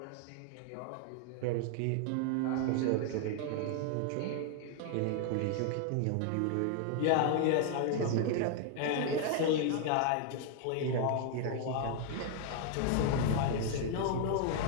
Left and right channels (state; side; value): different; both; correlation 0.00